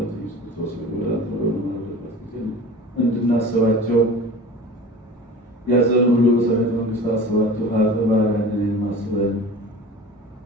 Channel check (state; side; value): normal; both; correlation 0.38